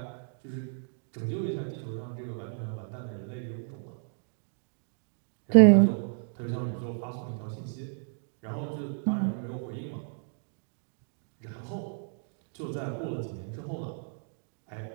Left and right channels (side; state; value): left; silent; digital silence